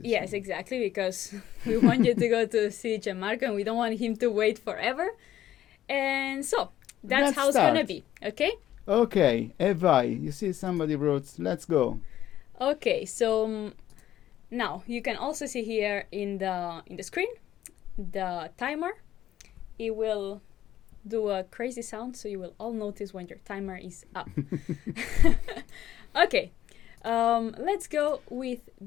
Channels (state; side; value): quieter; right; 12.5 dB